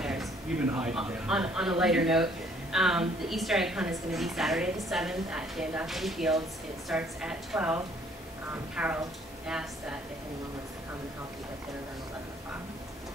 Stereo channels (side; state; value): both; normal; correlation 0.61